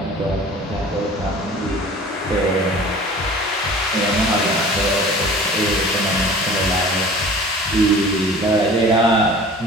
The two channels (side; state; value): both; normal; correlation 0.43